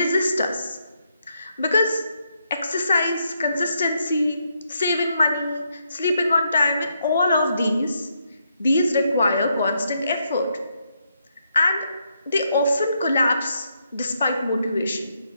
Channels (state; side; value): inverted; both; correlation -0.78